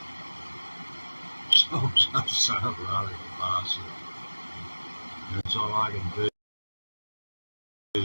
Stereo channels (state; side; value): inverted; both; correlation -1.00